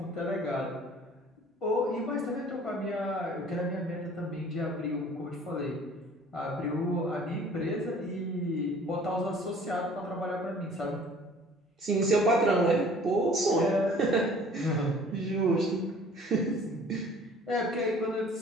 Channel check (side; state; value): both; normal; correlation 0.51